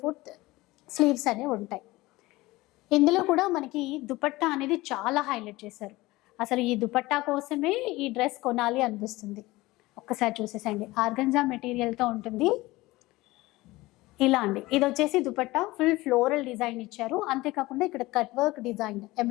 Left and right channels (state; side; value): quieter; right; 19.7 dB